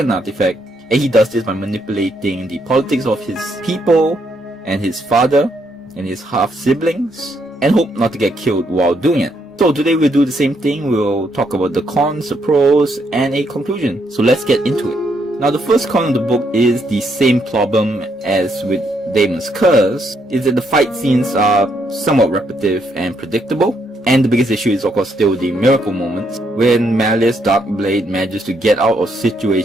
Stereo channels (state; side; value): normal; both; correlation 0.75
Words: artifact, and he does this by manipulating the politics of his people and his father and his half-siblings, and hope not to get killed while doing it. So today we'll do the same thing. We'll talk about the cons, the pros, and a conclusion. So let's get into it. Now the first con of the book is the same problem as with Daemon's Curse, is that the fight scenes are somewhat repetitive and predictable. And the biggest issue is of course still the miracle moments, when Malus Darkblade manages to get out of